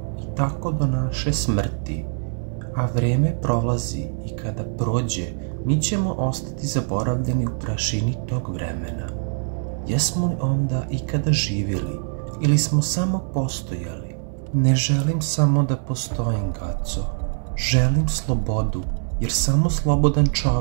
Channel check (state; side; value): silent; left; digital silence